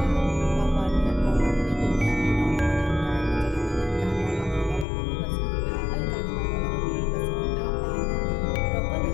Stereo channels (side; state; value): right; drops out; at 4.9 s